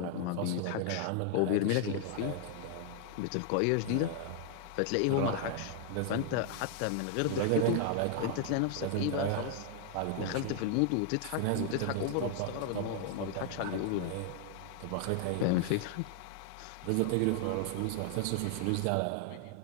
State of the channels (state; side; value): different; both; correlation 0.00